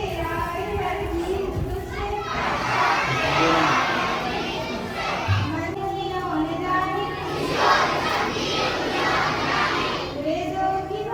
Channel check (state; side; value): identical; both; correlation 1.00